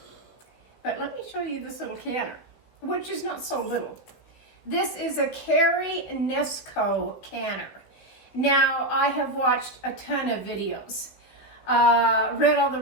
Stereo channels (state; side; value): late; right; 16 ms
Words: but let me show you this little canner, which is not so little. This is a Carry Nesco canner. Now, I have watched a ton of videos, read all the